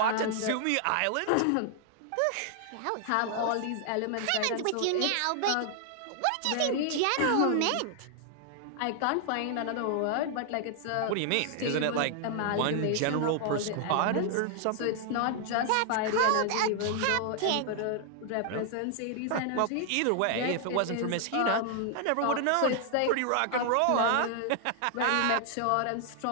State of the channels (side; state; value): both; different; correlation 0.00